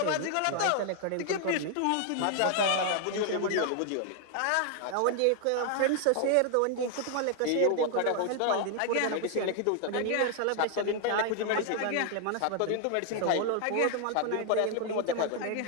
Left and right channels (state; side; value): different; both; correlation 0.00